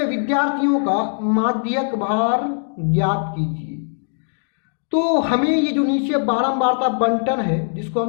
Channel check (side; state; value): right; silent; digital silence